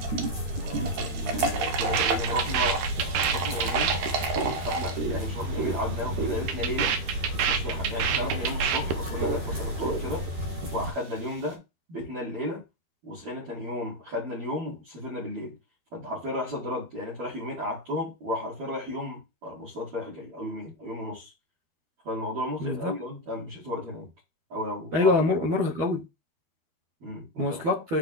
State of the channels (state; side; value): late; left; 13 ms